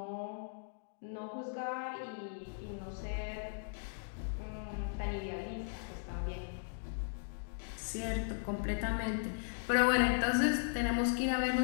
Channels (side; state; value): right; silent; digital silence